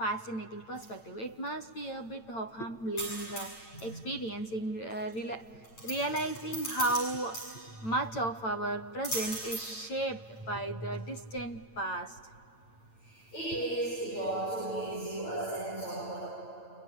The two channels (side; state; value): right; late; 8.9 ms